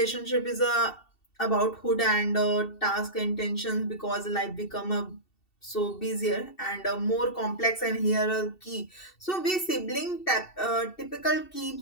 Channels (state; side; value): late; right; 2.7 ms